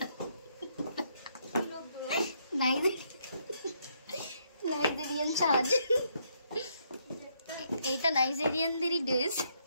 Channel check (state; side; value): inverted; both; correlation -0.74